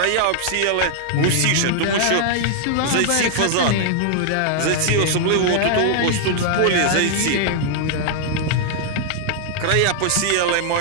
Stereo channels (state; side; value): different; both; correlation -0.01